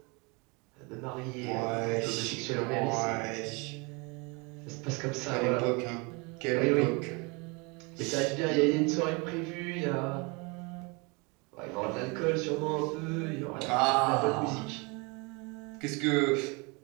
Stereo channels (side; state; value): left; quieter; 29.3 dB